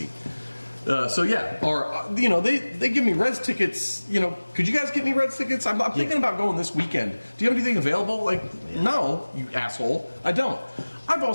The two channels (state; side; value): inverted; both; correlation -1.00